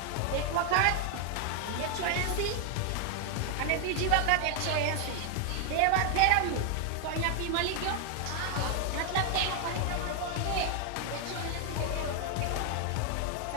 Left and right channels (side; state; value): both; different; correlation 0.00